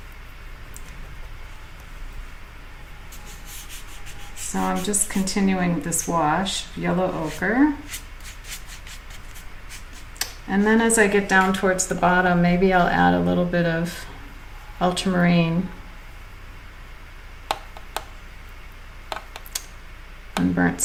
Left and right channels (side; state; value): both; identical; correlation 1.00